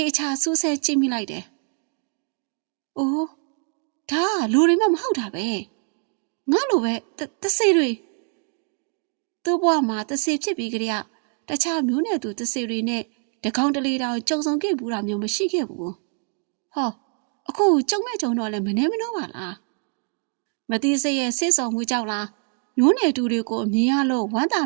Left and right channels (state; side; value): quieter; left; 39.7 dB